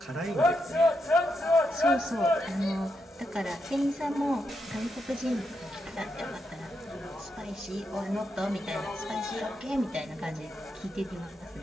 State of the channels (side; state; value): both; normal; correlation 0.82